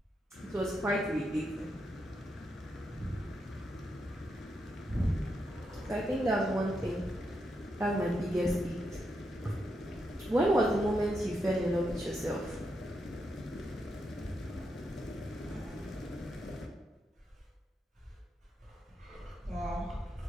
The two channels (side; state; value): both; normal; correlation 0.83